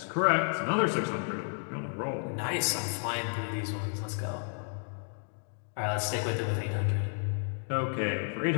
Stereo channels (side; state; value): right; silent; 57 dB below the other